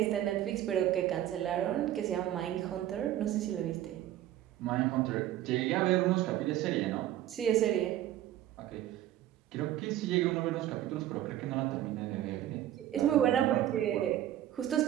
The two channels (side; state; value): left; quieter; 12.8 dB